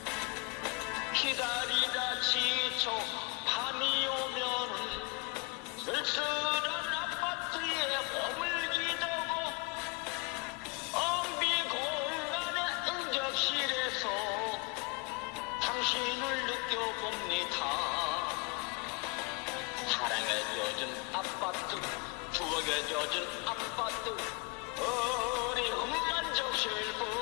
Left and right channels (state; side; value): quieter; right; 28.9 dB